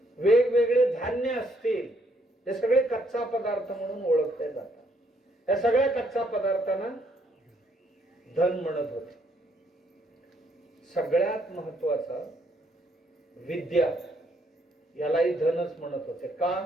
वेगवेगळे धान्य असतील, हे सगळे कच्चा पदार्थ म्हणून ओळखले जातात. या सगळ्या कच्चा पदार्थांना धन म्हणत होते. सगळ्यात महत्वाचा विद्या, यालाही धनच म्हणत होते.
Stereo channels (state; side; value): normal; both; correlation 0.71